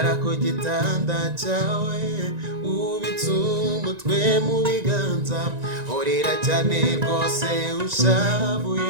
ku gitanda cyawe ubitse umutwe mu biganza urira cyane rwose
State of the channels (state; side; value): late; left; 1.9 ms